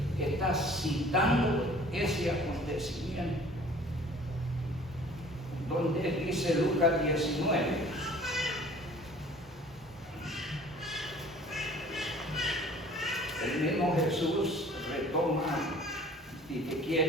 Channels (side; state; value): both; normal; correlation 0.50